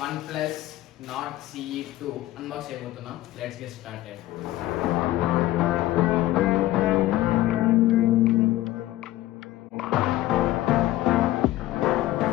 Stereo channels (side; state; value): right; quieter; 15.8 dB